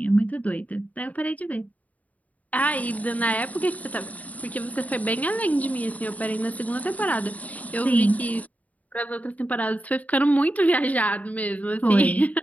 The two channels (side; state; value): right; late; 0.072 ms